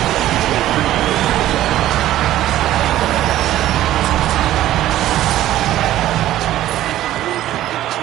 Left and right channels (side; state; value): left; quieter; 13.7 dB